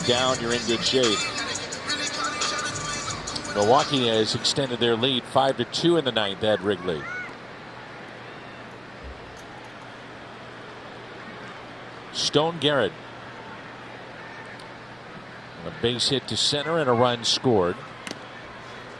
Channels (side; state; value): right; noise; rumble, 29 dB below the sound